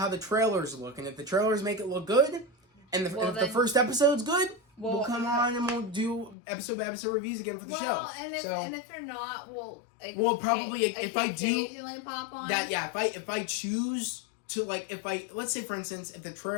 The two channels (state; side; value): drops out; right; at 6.4 s